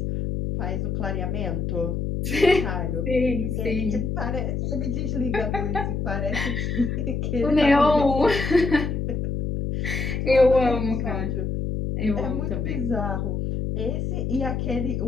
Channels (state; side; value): noise; left; hum, 1 dB below the sound